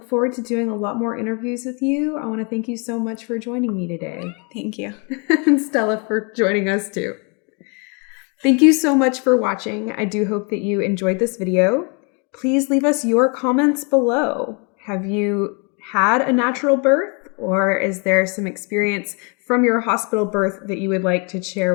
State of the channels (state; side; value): quieter; right; 34.4 dB